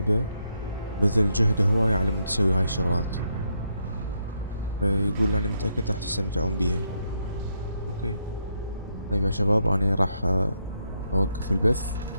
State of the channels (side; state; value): both; inverted; correlation -0.78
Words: بذل جهده هواية على مود يسوي هاي الشغلات، فيقول أنا متأكد راح تستمتعون بيها. أوكي طيب يا شباب، أنا راح أوقف البث